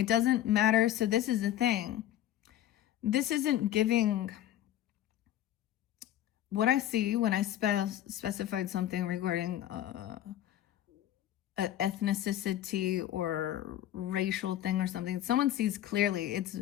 doesn't matter. So this is the thing. This isn't giving, what I see when I specified something regarding ethnicity or racial thing or something. Someone sees clearly. It's,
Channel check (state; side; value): quieter; right; 12.3 dB